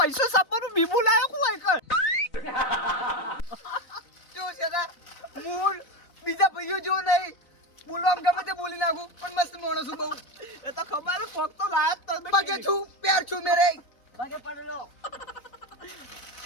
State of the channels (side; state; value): right; late; 4.0 ms